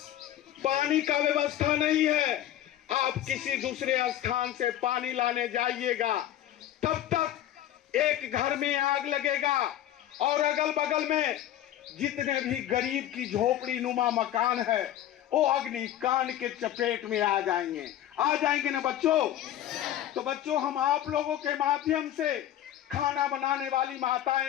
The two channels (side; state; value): right; quieter; 12.3 dB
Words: पानी का व्यवस्था नहीं है, आप किसी दूसरे स्थान से पानी लाने जाइएगा, तब तक एक घर में आग लगेगा और अगल बगल में जितने भी गरीब की झोपड़ी नुमा मकान है वो अग्निकांड के चपेट में आ जाएंगे ना बच्चों? तो बच्चों, हम आप लोगों के माध्यम से खाना बनाने वाली